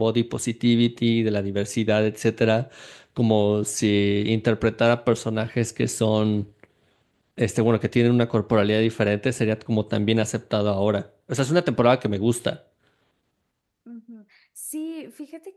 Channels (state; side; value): identical; both; correlation 1.00